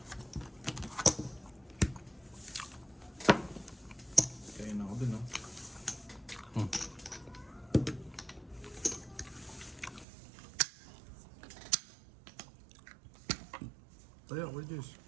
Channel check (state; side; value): drops out; left; at 10.1 s